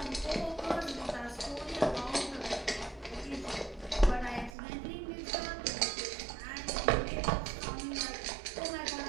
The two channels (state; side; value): drops out; left; at 4.5 s